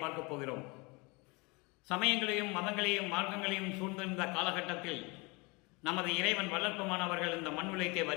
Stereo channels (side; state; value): right; quieter; 27.4 dB